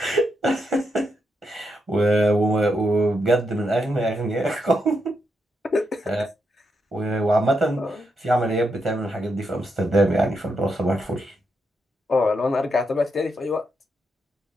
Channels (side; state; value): both; normal; correlation 0.82